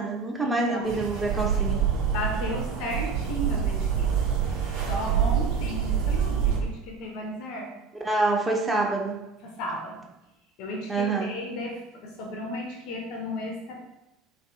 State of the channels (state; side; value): quieter; left; 4.3 dB